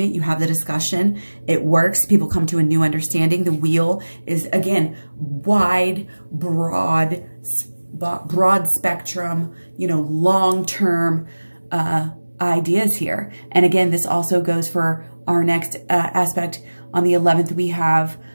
you have the discussion, it works, people come to a new understanding. The wheel is, again, wide, broad spectrum, you know, long-term ideas here. And again, this also goes for our next aspect. On the 11th, we have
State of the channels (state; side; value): inverted; both; correlation -1.00